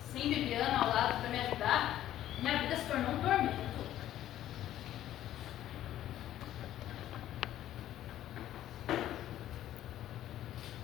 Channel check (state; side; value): quieter; right; 12.6 dB